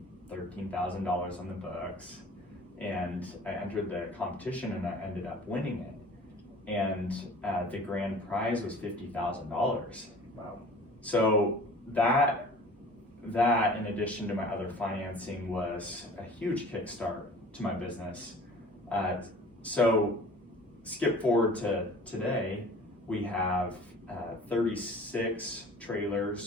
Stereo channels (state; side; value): normal; both; correlation 0.45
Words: $13,000 on the books. And I entered the competition and I ended up winning it. And the grand prize was $50,000. Wow. So that in addition to my other financing was a huge kickstart to my business. So skip forward to today, we have 36